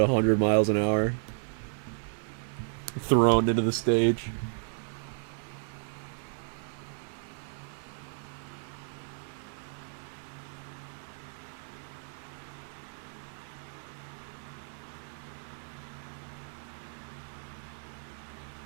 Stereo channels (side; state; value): left; silent; 56 dB below the other